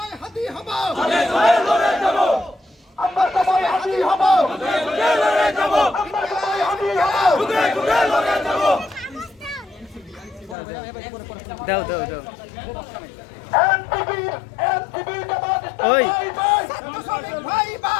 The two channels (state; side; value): drops out; right; at 10.6 s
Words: হাতি হব আগে সবাই লড়ে যাব আমরা সবাই হাতি হব আগে লড়ে যাব আমরা সবাই হাতি হব খুদে খুদে লড়ে যাব দাও দাও দাও এনসিপি এনসিপি জামাত ওই ছাত্র শ্রমিক ভাই